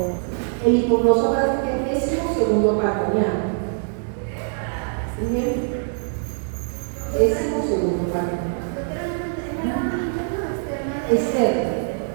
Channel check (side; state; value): left; silent; digital silence